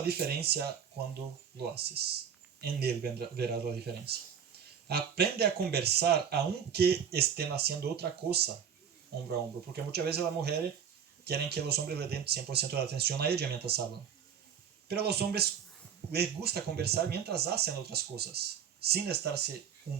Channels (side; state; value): left; quieter; 7.8 dB